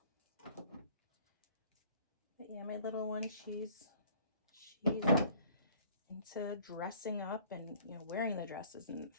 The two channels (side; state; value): both; inverted; correlation -0.54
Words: But yeah, my little one, she's into dressing up and, you know, wearing the dresses and